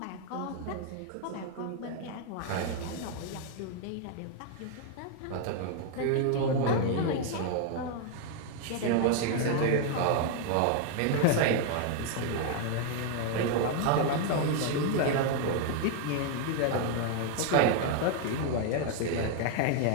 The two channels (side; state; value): both; different; correlation 0.00